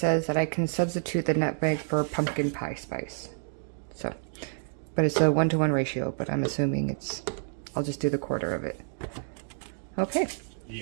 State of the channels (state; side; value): silent; left; digital silence